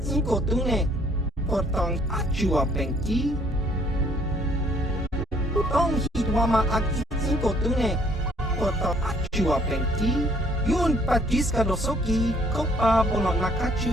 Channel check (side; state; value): both; normal; correlation 0.62